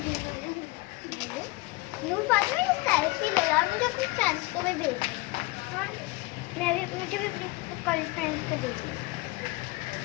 नूर फातिमा ये सेल्फी लो यार, मुझे अपनी फ्रेंड्स को भी भेज। हाँ मुझे भी अपनी कल फ्रेंड्स को भेजना।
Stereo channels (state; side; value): quieter; right; 22.3 dB